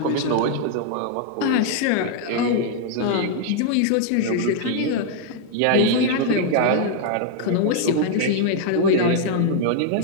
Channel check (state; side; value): different; both; correlation 0.00